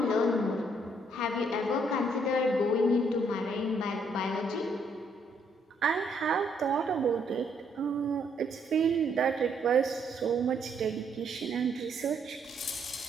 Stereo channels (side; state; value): both; normal; correlation 0.70